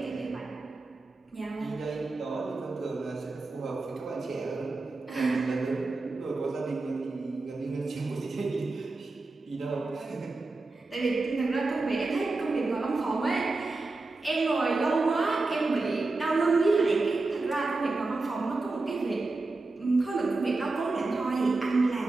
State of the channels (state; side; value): quieter; left; 3.4 dB